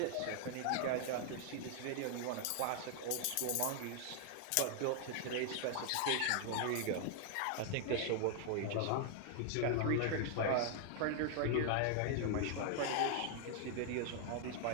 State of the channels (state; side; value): different; both; correlation 0.00